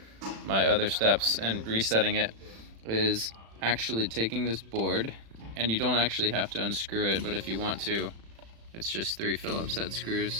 my other steps and resetting it is actually taking this board, and you don't actually have to unscrew it, but if you want to, it's just 3 Phillips head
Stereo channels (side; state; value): left; late; 36 ms